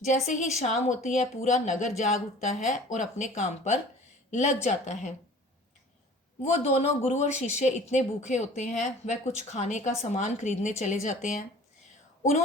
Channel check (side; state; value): both; normal; correlation 0.46